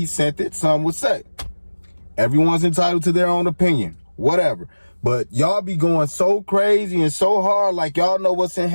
sent it, some would say. Everyone's entitled to their own opinion, whatever. But y'all be going so crazy and so hard like y'all know what's in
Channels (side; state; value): both; inverted; correlation -1.00